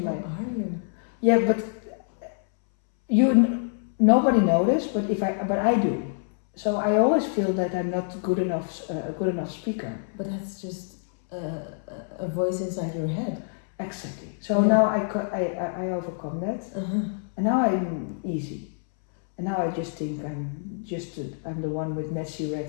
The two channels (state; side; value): silent; right; 61 dB below the other